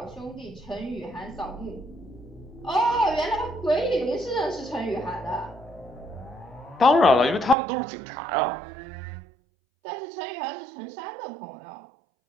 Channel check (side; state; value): left; drops out; at 7.6 s